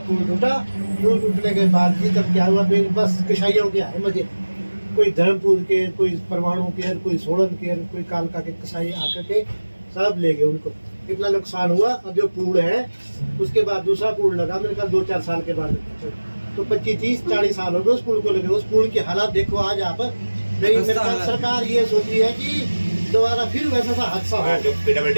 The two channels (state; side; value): inverted; both; correlation -1.00